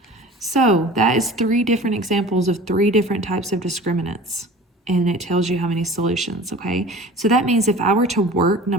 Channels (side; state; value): both; normal; correlation 0.41